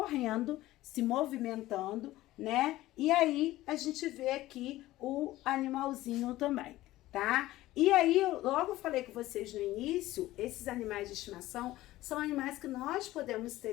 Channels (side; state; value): right; quieter; 16.4 dB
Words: se movimentando, né? E aí, a gente vê aqui o animalzinho também, tá? E aí, logo eu falei com vocês no início, esses animais de estimação são animais que nós podemos